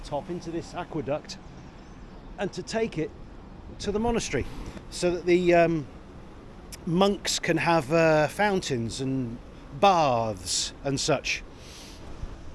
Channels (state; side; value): identical; both; correlation 1.00